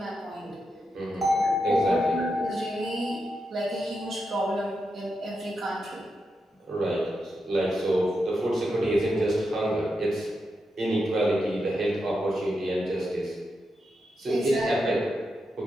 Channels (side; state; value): both; normal; correlation 0.86